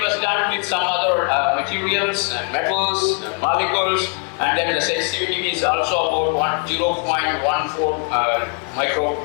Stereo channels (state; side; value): quieter; right; 33.9 dB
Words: was done with some other materials and metals and molecules, and then the sensitivity is also about 0.14